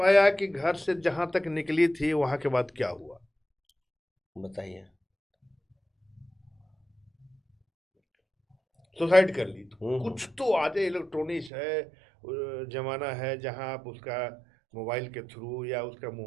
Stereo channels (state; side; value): drops out; left; at 11.5 s